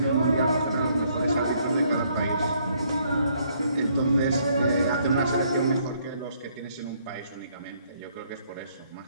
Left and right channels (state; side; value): inverted; both; correlation -0.68